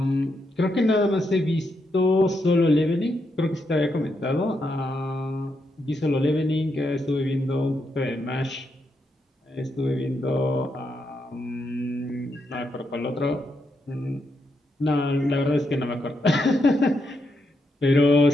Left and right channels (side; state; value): both; normal; correlation 0.81